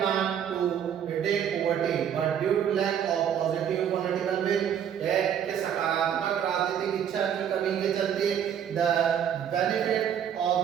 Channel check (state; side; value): quieter; left; 8.9 dB